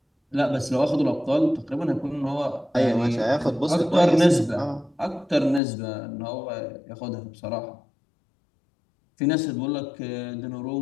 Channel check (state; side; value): drops out; right; at 5.6 s